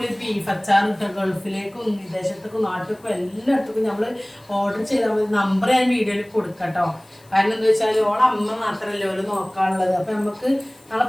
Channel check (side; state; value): left; noise; hiss, 29 dB below the sound